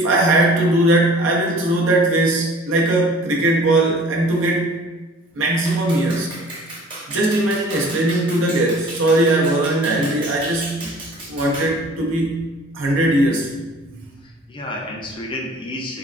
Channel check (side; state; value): both; normal; correlation 0.49